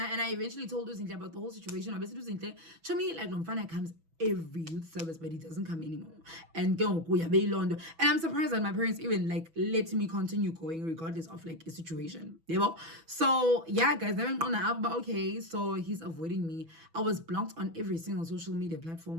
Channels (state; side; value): late; left; 6.1 ms